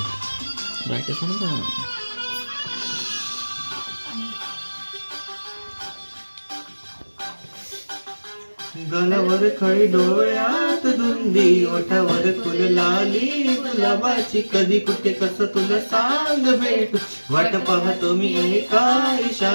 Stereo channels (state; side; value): inverted; both; correlation -1.00